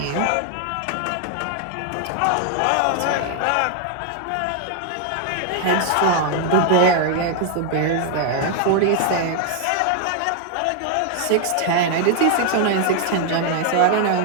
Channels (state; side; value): different; both; correlation 0.00